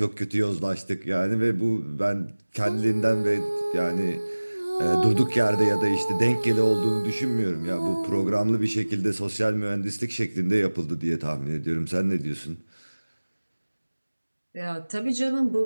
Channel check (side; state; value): both; inverted; correlation -1.00